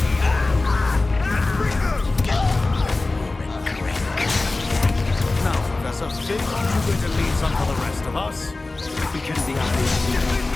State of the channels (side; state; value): right; quieter; 3.2 dB